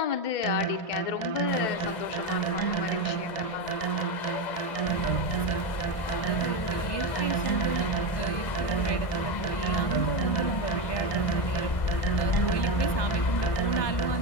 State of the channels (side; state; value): right; late; 1.6 ms